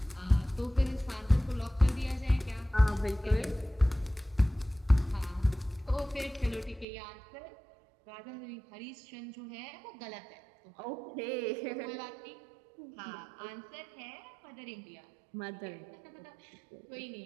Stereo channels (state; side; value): drops out; left; at 6.9 s